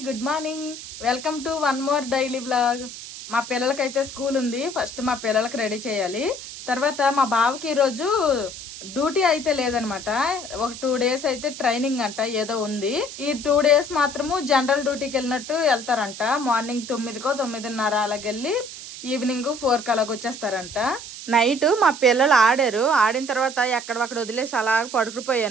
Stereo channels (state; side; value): noise; right; hiss, 12 dB below the sound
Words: good morning. Welcome to one more daily blog. మా పిల్లలకైతే స్కూల్ ఉంది. ఫస్ట్ మా పిల్లలకి రెడీ చేయాలి. తర్వాత మా బావకి ఈరోజు డ్యూటీ అయితే లేదనమాట. ఒక 2 days అయితే ట్రైనింగ్ అంట ఏదో ఉంది. ఈ 2 days మాత్రము జనరల్ డ్యూటీకి వెళ్ళినట్టు వెళ్తారంట. మార్నింగ్ 9కో 9:30 అలాగెళ్ళి ఈవినింగ్ 4కి అలాగ వచ్చేస్తారంట. నైట్ మా పిల్లలు ఆడిన తర్వాత ఎక్కడొక్కడ వదిలేసి అలా